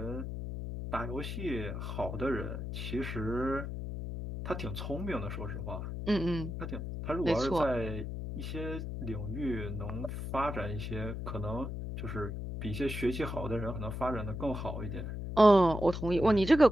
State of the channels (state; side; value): noise; left; hum, 5 dB below the sound